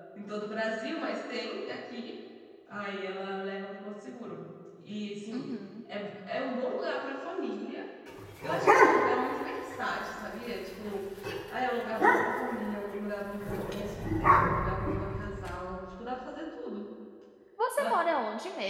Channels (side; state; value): both; identical; correlation 1.00